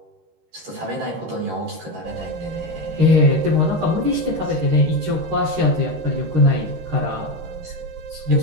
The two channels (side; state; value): left; late; 13 ms